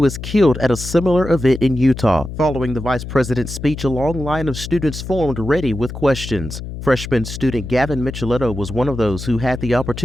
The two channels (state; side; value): noise; left; hum, 9 dB below the sound